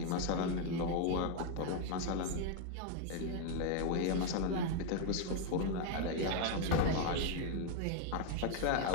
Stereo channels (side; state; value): both; different; correlation 0.01